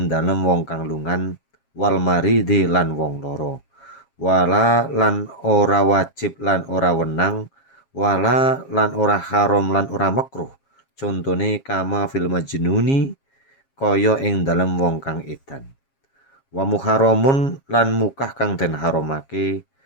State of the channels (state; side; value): late; right; 7.4 ms